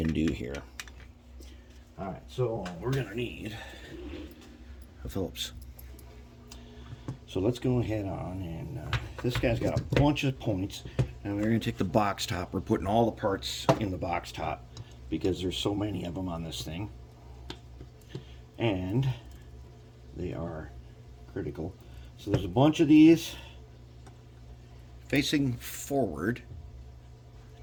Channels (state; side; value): identical; both; correlation 1.00